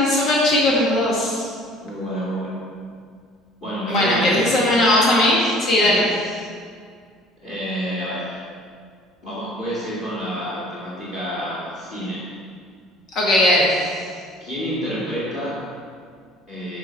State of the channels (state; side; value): normal; both; correlation 0.51